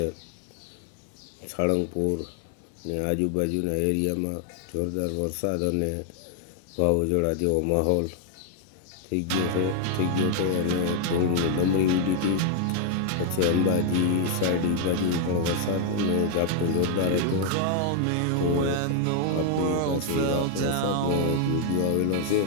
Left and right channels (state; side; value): different; both; correlation 0.00